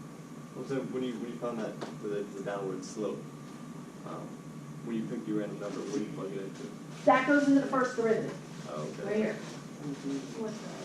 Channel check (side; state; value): both; identical; correlation 1.00